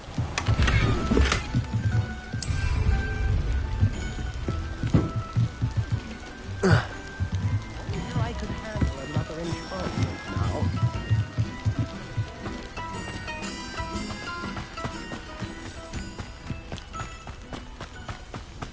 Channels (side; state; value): both; identical; correlation 1.00